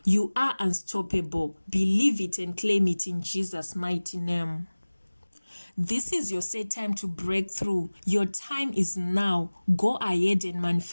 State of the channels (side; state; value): both; inverted; correlation -1.00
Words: You are unstoppable. Believe it and claim it in Jesus' mighty name. This is your set time to break through. Your time is now. Go ahead and